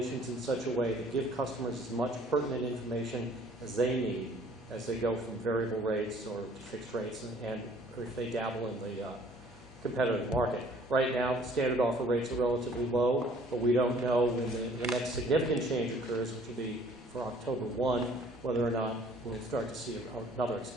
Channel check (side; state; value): both; normal; correlation 0.56